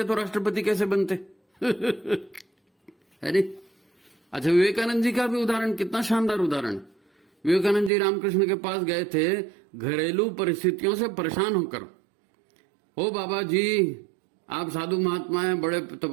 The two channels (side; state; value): left; drops out; at 7.9 s